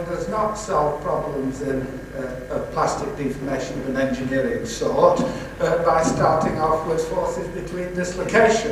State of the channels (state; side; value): identical; both; correlation 1.00